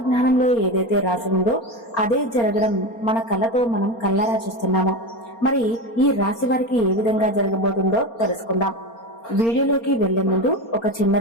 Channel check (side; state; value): right; late; 4.3 ms